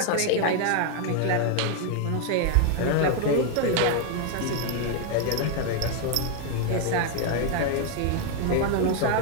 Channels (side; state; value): both; different; correlation 0.00